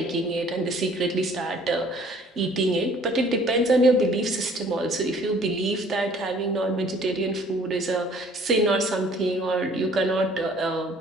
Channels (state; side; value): normal; both; correlation 0.56